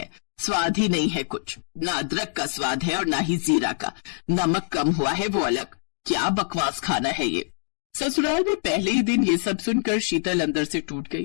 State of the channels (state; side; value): silent; right; digital silence